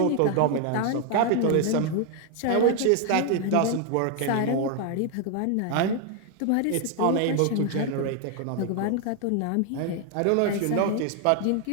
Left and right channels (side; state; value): both; different; correlation 0.00